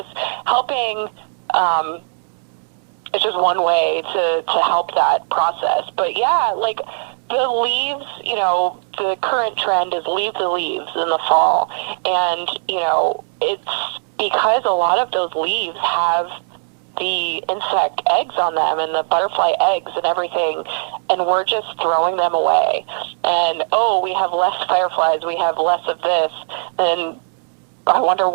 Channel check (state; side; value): silent; left; digital silence